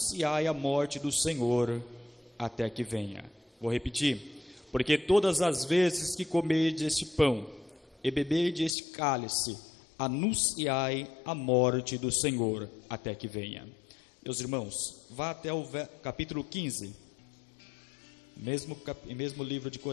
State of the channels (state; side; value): drops out; right; at 8.8 s